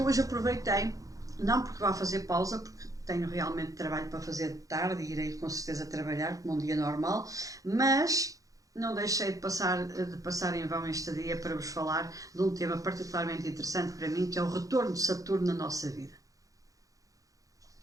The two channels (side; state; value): left; late; 0.17 ms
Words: hoje aproveitei, não porque vá fazer pausa, porque tenho realmente trabalho para fazer de tarde e irei com certeza trabalhar como um dia normal, mas não deixei de passar em vão este dia para vos falar de um tema particularmente interessante para mim, que é o retorno de Saturno na nossa vida.